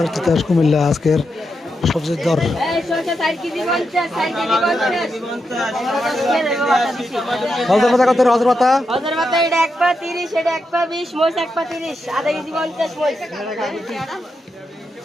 তিতাস কুমিল্লা আজকের সবজির দর এই শসা 60 কেজি 50 60 কেজি 50 হজর পাতা কত হজর পাতা এটা 1 পা 30 এটা 1 পা 20 মোষ 1 পা 30 আধা কেজি 50 মোষ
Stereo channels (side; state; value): both; normal; correlation 0.85